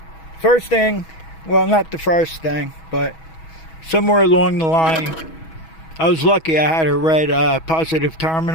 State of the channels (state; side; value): late; right; 6.2 ms